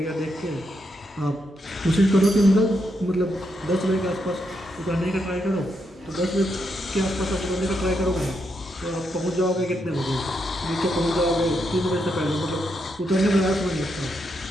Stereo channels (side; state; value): both; normal; correlation 0.81